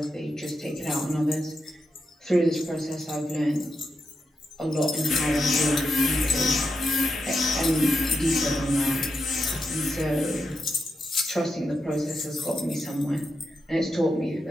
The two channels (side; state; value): both; normal; correlation 0.85